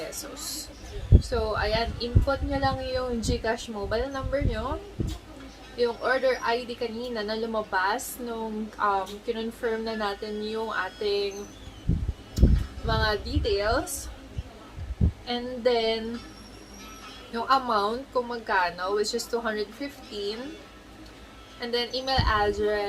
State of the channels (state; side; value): identical; both; correlation 1.00